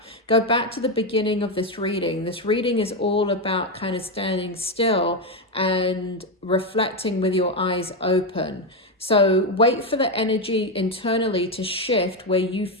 Go back to the beginning of this reading. This reading is all about kind of standing still and reflecting with your eyes open. So wait for the energy internally to shift where you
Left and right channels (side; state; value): both; normal; correlation 0.08